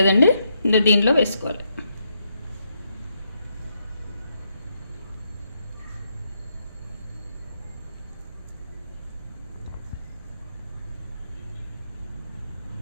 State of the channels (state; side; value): inverted; both; correlation -0.79